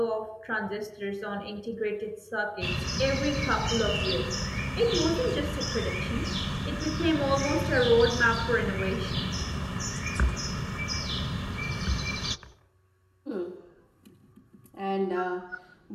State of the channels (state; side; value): identical; both; correlation 1.00